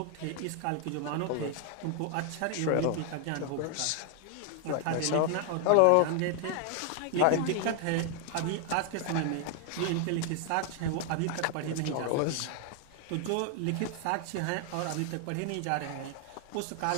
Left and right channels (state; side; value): different; both; correlation 0.00